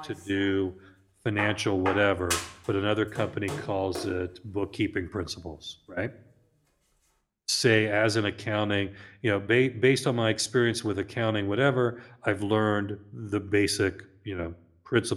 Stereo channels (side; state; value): both; identical; correlation 1.00